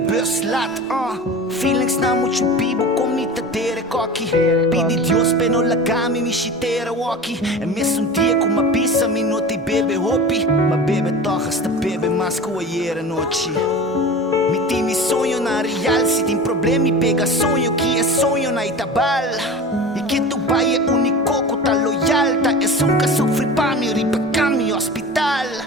laat. Feelings na mucho bibo com mi tatere cocky. Pidi Dios peno la cami mi chitera walkie. E mesmo dia com uma pizza mi noti bebe hopi. Ma bebe toch hasta bebe mas com a yera noite. Mi tem mi sonho na real, se tem problema me pega sonho que é sonho na Itabal. E que tu pai é único que tá loyal, tá é um que sofre pra me ripa cami hospital.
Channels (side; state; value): both; normal; correlation 0.34